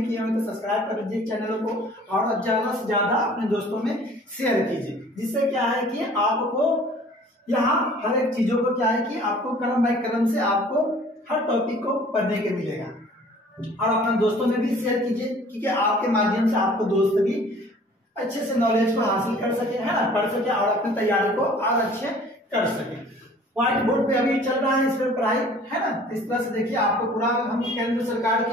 किए हो तो सब्सक्राइब कर लीजिए चैनल को और ज्यादा से ज्यादा अपने दोस्तों में शेयर कीजिए, जिससे क्या है कि आपको यहाँ हर एक चीजों को क्या है कि आपको क्रम बाय क्रम से आपको हर टॉपिक को पढ़ने के मिलेगा। और अपने दोस्तों में भी शेयर कीजिए, क्योंकि आपके माध्यम से आपको दोस्त भी अच्छे से नॉलेज को हासिल कर सके, है ना, पढ़ सके और अपनी तैयारी को और अच्छे कर सके। व्हाइट बोर्ड पे अभी चल रहा है इस पर पढ़ाई, है ना। इस तरह से देखिए आपको पूरा हम केंद्र सरकार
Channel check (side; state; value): both; normal; correlation 0.51